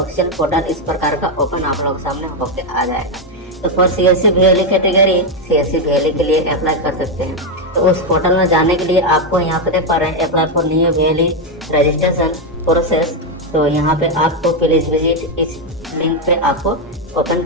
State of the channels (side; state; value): both; normal; correlation 0.04